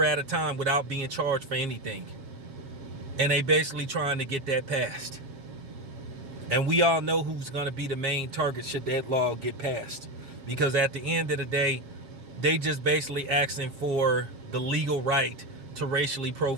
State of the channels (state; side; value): late; left; 7.4 ms